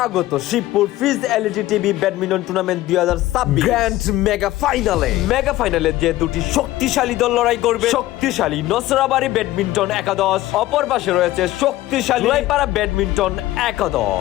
শিবপুর ফিজ LED TV badminton tournament 2026 grand mega ফাইনালে যে দুটি শক্তিশালী দল লড়াই করবে। শক্তিশালী নসরাবাড়ি ব্যাডমিন্টন একাদশ, অপর পাশে রয়েছে শক্তিশালী জয়পাড়া ব্যাডমিন্টন একাদশ।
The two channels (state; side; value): quieter; right; 16.1 dB